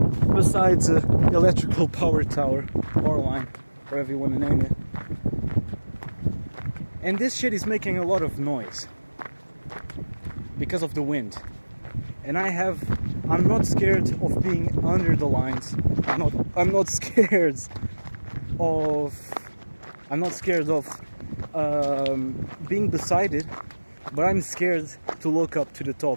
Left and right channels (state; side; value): inverted; both; correlation -1.00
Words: besides an electrical power line, whatever you want to name it. And this shit is making a lot of noise because of the wind. And I'm not scared of being under the lines. I'm not scared of being beside it, but I'm scared to look up to the